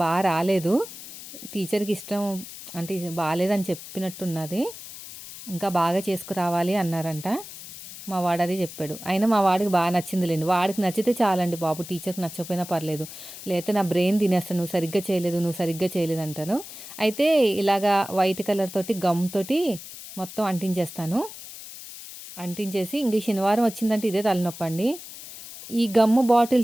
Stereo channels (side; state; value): left; noise; hiss, 13 dB below the sound